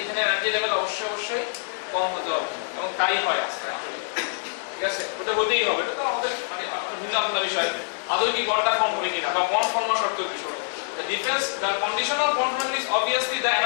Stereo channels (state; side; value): silent; right; 61 dB below the other